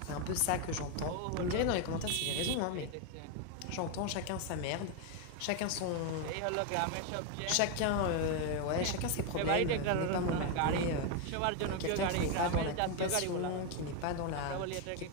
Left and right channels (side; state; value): both; different; correlation 0.01